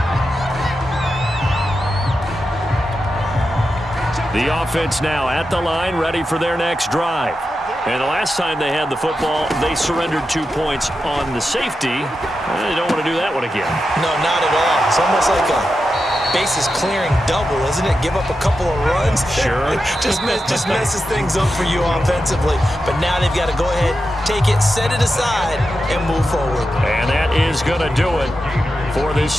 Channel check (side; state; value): both; normal; correlation 0.89